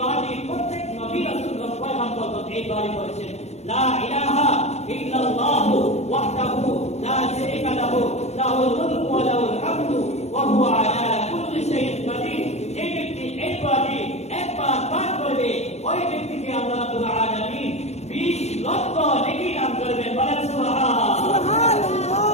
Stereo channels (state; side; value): late; right; 0.32 ms